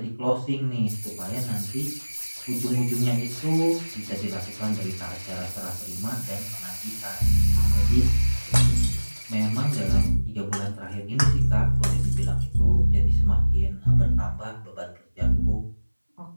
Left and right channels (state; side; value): inverted; both; correlation -1.00